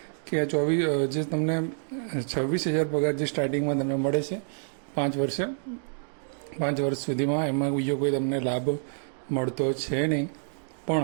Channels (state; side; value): silent; left; digital silence